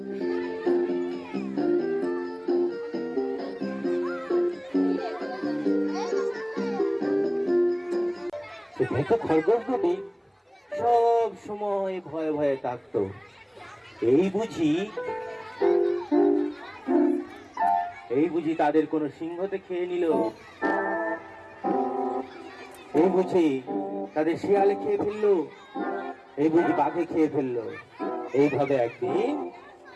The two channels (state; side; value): identical; both; correlation 1.00